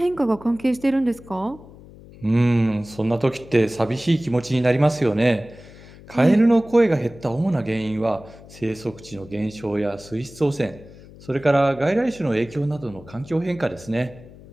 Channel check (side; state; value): left; noise; hum, 20 dB below the sound